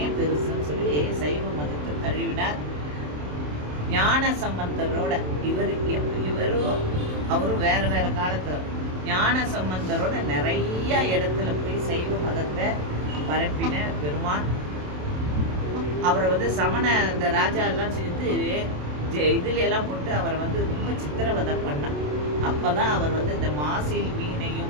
பெருசுன்னு சொல்லி சைவ மதத்தை தழுவினார். ஞான சம்பந்தரோட இவரும் அவரும் வேற வேற காலத்துல ஞான சம்பந்தரோட நிறைய இடத்துல போய் சைவ மதத்தை பரப்பின பெருமான். அவரை சமண இந்த ராஜா எல்லாம் சேர்ந்து இதுல எல்லாம் போட்டு அவரை ரொம்ப சித்திரவதை பண்ணான். அப்பதான் அவர் இந்த மாசில்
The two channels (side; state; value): left; late; 27 ms